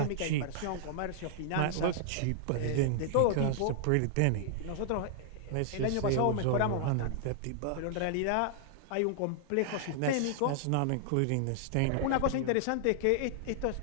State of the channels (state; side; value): different; both; correlation -0.01